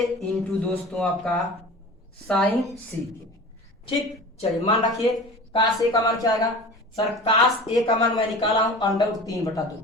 इंटू दोस्तों आपका साइन c। ठीक, चलिए मान रखिए cos a का मान क्या आएगा सर, cos a का मान मैं निकाला हूं √3/2,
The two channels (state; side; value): normal; both; correlation 0.37